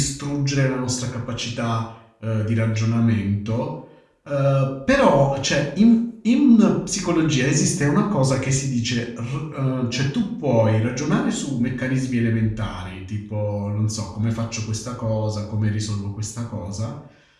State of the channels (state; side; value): identical; both; correlation 1.00